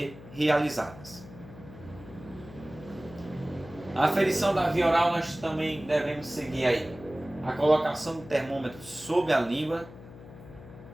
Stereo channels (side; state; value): left; noise; hum, 17 dB below the sound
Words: realizadas. A aferição da via oral nós também devemos seguir aí a colocação do termômetro sob a língua,